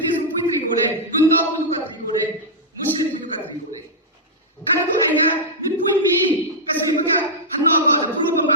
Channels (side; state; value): both; normal; correlation -0.09